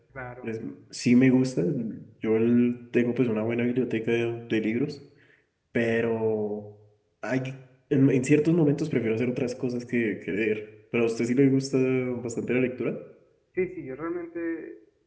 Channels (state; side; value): identical; both; correlation 1.00